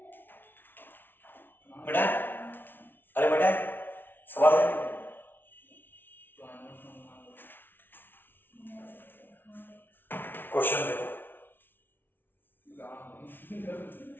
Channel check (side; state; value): right; late; 0.10 ms